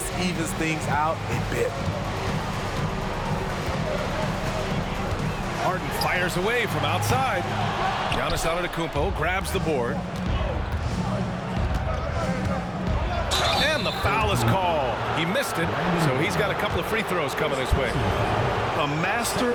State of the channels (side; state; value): both; identical; correlation 1.00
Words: evens things out a bit. Harden fires away from outside. Giannis Antetokounmpo grabs the board. And the foul is called. He missed it, so he's got a couple of free throws coming his way. A master